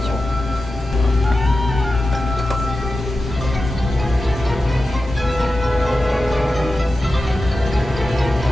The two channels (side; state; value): both; normal; correlation 0.92